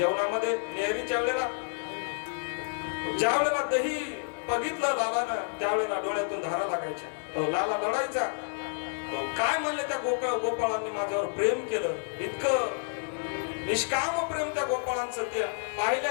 नेहरीच्या वेळेला ज्या वेळेला दही बघितलं लालानं त्यावेळेला डोळ्यातून धारा लागायच्या. लाला लढायचा. काय म्हणले त्या गोपाळांनी माझ्यावर प्रेम केलं. इतकं निष्काम प्रेम त्या गोपाळांचं. त्या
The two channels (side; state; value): right; silent; digital silence